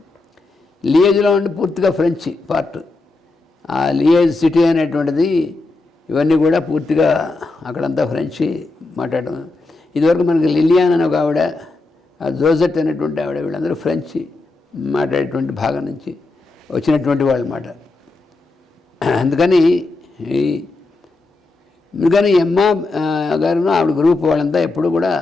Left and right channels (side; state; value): right; quieter; 3.3 dB